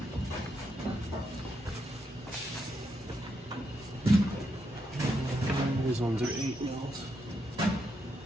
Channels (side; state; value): both; normal; correlation 0.81